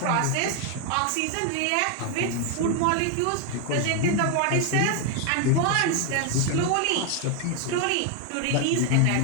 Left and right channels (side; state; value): both; different; correlation 0.01